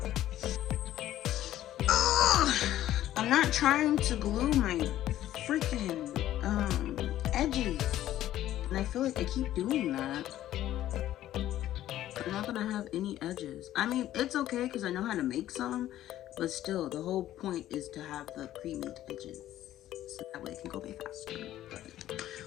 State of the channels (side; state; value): right; quieter; 13.2 dB